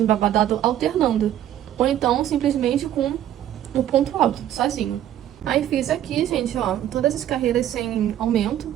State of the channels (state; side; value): quieter; left; 11.7 dB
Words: alternando. Ou então, simplesmente com o ponto alto, sozinho. Aí fiz aqui, gente, ó, todas as carreiras sem aumento.